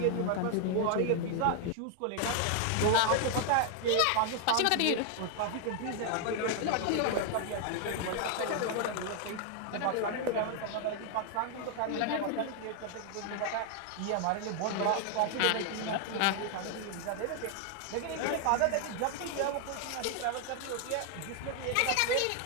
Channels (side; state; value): both; different; correlation 0.00